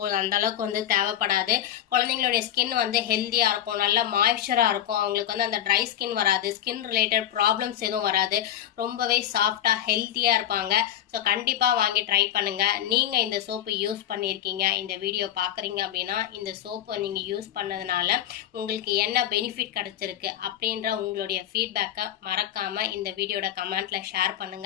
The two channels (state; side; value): quieter; right; 11.5 dB